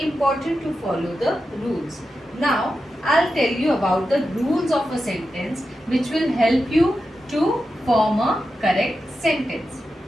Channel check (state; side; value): normal; both; correlation 0.90